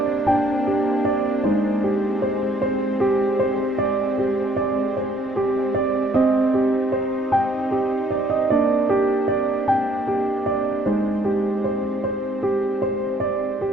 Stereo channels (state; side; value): normal; both; correlation 0.63